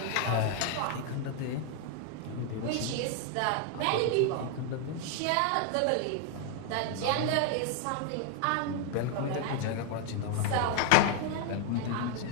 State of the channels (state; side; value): different; both; correlation 0.00